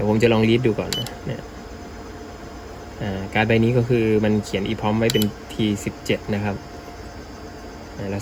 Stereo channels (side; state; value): both; identical; correlation 1.00